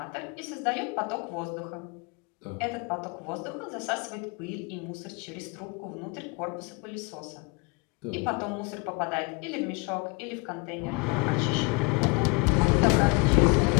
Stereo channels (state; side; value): quieter; right; 28.8 dB